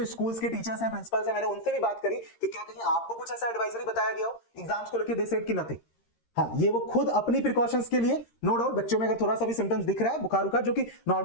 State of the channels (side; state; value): right; late; 13 ms